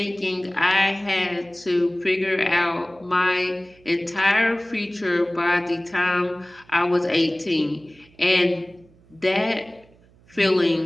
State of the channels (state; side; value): noise; right; hum, 29 dB below the sound